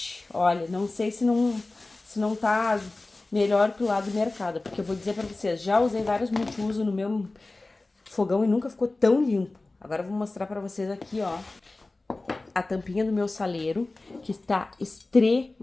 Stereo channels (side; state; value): right; quieter; 3.1 dB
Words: Olha, não sei se não tá melhor que o lado do mercado, porque eu vou dizer pra vocês, já usei vários multiuso no meu fogão e nunca ficou tão limpo. Agora eu vou mostrar pra vocês aqui, ó, a tampinha do meu saleiro, que está